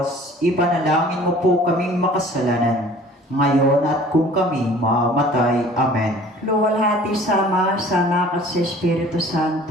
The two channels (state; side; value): normal; both; correlation 0.49